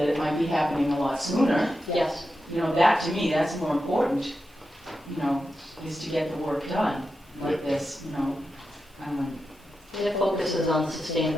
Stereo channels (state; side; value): normal; both; correlation 0.89